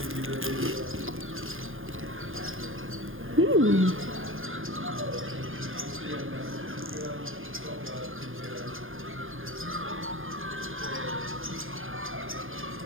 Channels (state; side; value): late; left; 0.59 ms